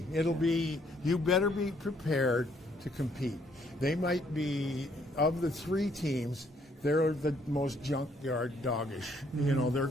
You better be prepared to compete. They might be, of the 3 teams, they're the most junkyard doggish. They're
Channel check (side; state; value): both; normal; correlation 0.67